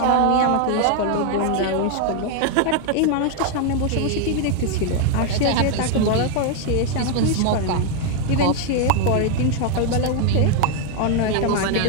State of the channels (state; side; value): different; both; correlation 0.01